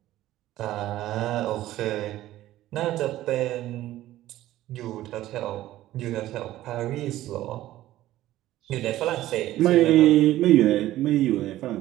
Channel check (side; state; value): left; quieter; 14.7 dB